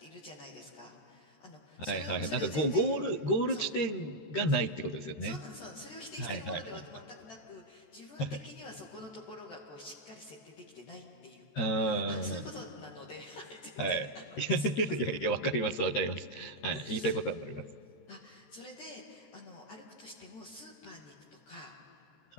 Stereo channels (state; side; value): late; right; 13 ms